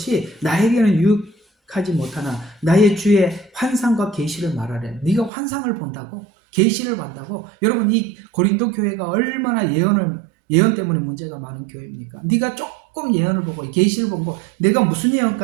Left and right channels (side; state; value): left; drops out; at 5.3 s